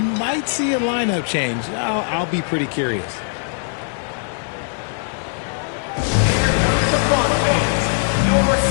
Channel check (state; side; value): silent; right; 66 dB below the other